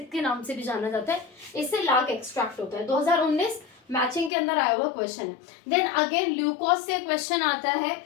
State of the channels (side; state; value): right; drops out; at 4.3 s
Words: के नाम से भी जाना जाता है, इससे लाख एक्सट्रैक्ट होता है। 2019 मैचिंग के अंदर आया हुआ क्वेश्चन है। देन अगेन ल्यूकोस से क्वेश्चन आता है